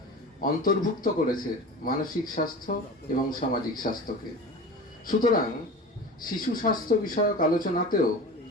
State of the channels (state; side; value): normal; both; correlation 0.33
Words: অন্তর্ভুক্ত করেছে মানসিক স্বাস্থ্য এবং সামাজিক স্বাস্থ্যকে। সুতরাং শিশু স্বাস্থ্য বিষয়ক আলোচনাতেও